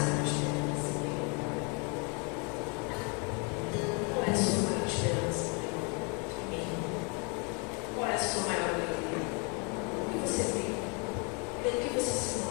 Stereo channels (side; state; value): right; quieter; 33.9 dB